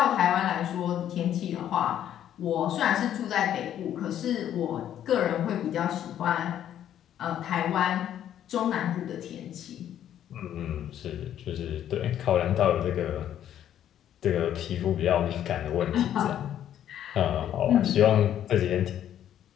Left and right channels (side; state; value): right; quieter; 10.7 dB